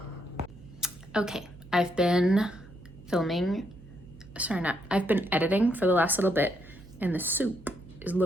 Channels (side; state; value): right; noise; hum, 20 dB below the sound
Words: Okay, I've been editing for the last little bit and the soup is